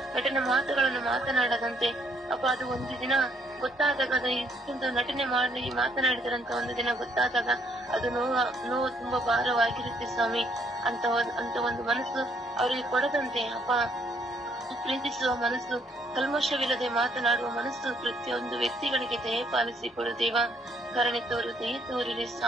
ಮಾತುಗಳನ್ನು ಮಾತನಾಡದಂತೆ ಅಪ್ಪ ಅದು ಒಂದು ದಿನ ಗೊತ್ತಾದಾಗ, ಅದು ಇಷ್ಟೊಂದು ನಟನೆ ಮಾಡಿ ಮಾತನಾಡಿದರಂತ ಒಂದು ದಿನ ಗೊತ್ತಾದಾಗ ಅದು ನೋವು ತುಂಬಾ ಭಾರವಾಗಿರುತ್ತೆ ಸ್ವಾಮಿ. ಅಂತ ಒಂದು ಮನಸ್ಸು ಅವರಿಗೆ ಕೊಡದಂತೆ ಅಪ್ಪ ಪ್ರೀತಿಸುವ ಮನಸ್ಸು, ಕಲ್ಮಶವಿಲ್ಲದೆ ಮಾತನಾಡುವ ಮನಸ್ಸು ಪ್ರತಿಯೊಂದು ವ್ಯಕ್ತಿಗಳಿಗೆ ದಯಪಾಲಿಸಿ ಕೊಡು ದೇವ. ಕರುಣೆ ತೋರು, ದಯ ತೋರಿರಿ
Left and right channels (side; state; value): both; normal; correlation 0.69